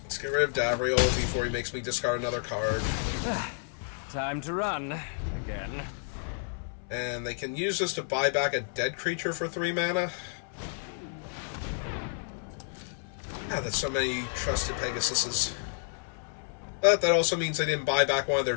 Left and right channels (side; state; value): right; silent; 58 dB below the other